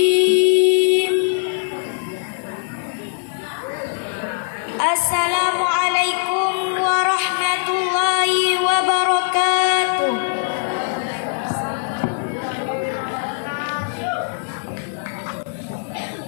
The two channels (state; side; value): silent; right; digital silence